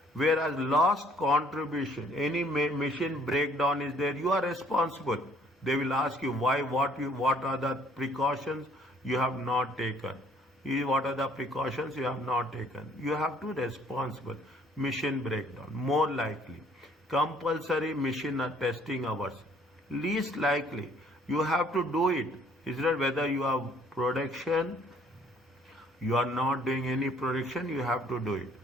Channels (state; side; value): normal; both; correlation 0.61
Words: Whereas lost contribution, any machine breakdown is there, you are responsible. They will ask you why, what are the precautions you have not taken. What are the precautions you have not taken? You have to responsible. Machine breakdown, more likely. Compulsory machine testing hours, least likely. You have to do it. Is that whether you have production, you are not doing any production, you have to do it.